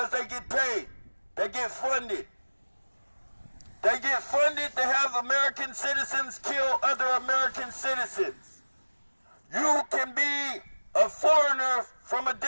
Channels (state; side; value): inverted; both; correlation -1.00